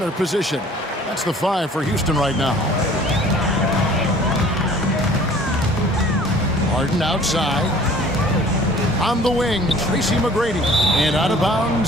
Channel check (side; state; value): both; normal; correlation 0.51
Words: position. That's the 5 for Houston right now. Harden outside. On the wing, Tracy McGrady. And out of